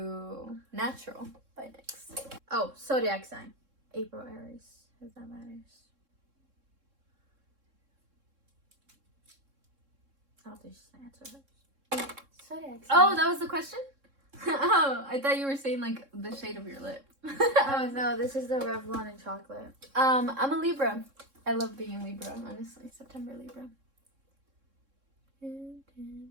Natural by NYX. Oh, zodiac sign. April, Aries. If that matters. I don't think she's gonna answer hers. Zodiac sign. Oh, that was the question? Oh, I thought you were saying like the shade of your lip. Oh no, this is the Revlon in chocolate. I'm a Libra. I love being Libra, honestly. September Libra. I'm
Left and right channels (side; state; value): left; late; 3.7 ms